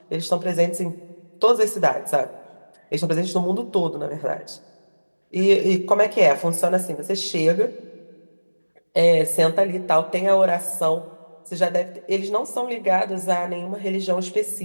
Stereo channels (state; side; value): inverted; both; correlation -1.00